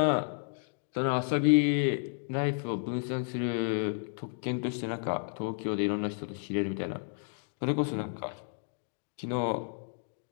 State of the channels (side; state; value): right; silent; digital silence